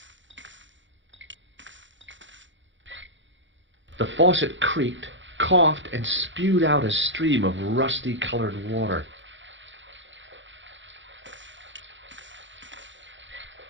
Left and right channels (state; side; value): late; left; 0.54 ms